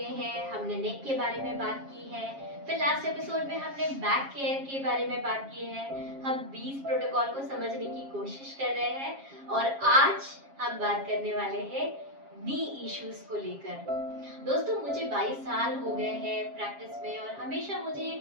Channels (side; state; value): left; late; 7.4 ms